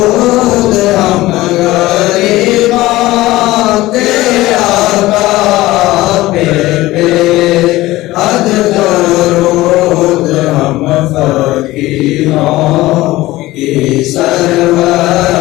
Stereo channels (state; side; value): quieter; right; 17.9 dB